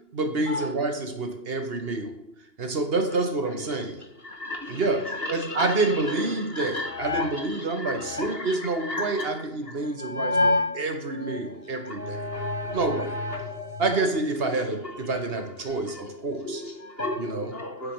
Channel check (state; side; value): late; left; 2.8 ms